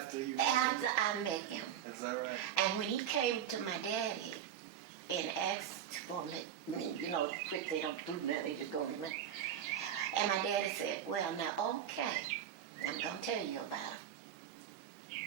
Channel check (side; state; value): left; quieter; 9.6 dB